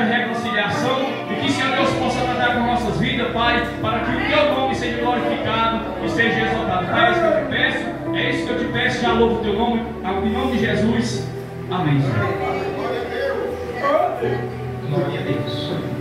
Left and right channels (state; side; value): identical; both; correlation 1.00